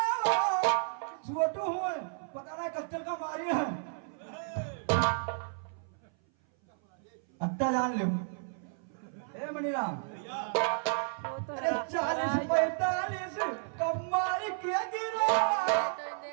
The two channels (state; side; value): silent; left; 56 dB below the other